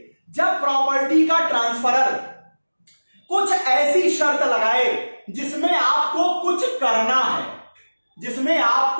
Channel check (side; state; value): both; inverted; correlation -1.00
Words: जब प्रॉपर्टी का ट्रांसफरर कुछ ऐसी शर्त लगाए जिसमें आपको कुछ करना है, जिसमें